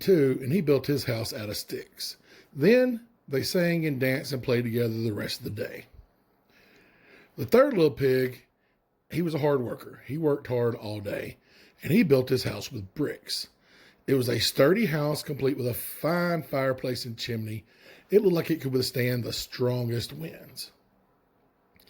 and he built his house out of sticks. Then they sang and danced and played together the rest of the day. The third little pig, he was a hard worker. He worked hard all day, and he built his house with bricks. It was a sturdy house complete with a fine fireplace and chimney. It looked like it could withstand the strongest winds.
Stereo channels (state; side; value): identical; both; correlation 1.00